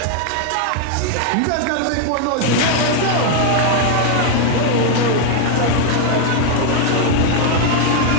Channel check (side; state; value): both; different; correlation 0.00